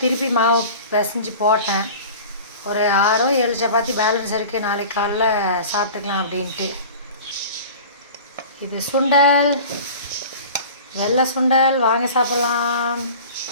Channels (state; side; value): inverted; both; correlation -0.39